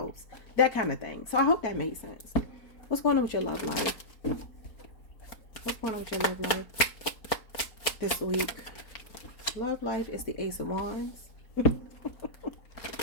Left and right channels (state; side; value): late; right; 4.4 ms